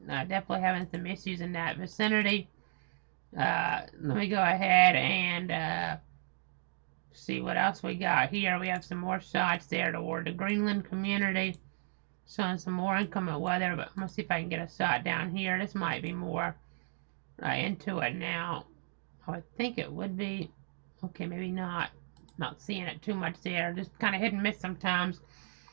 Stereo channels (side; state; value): left; silent; digital silence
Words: definitely having some issues in that vicinity. Let me go ahead and see what else we got here. We have some more shots there toward the Greenland community, showing some more inclement weather, but I'm going to see if I can get a shot down here. This might be more into it now. I would think it would be. Okay, maybe not. Not seeing it too much there. Just kind of hit and miss sometimes